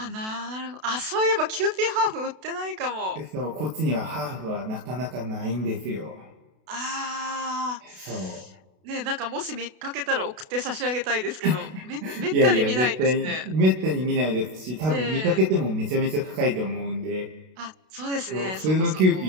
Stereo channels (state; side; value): late; left; 32 ms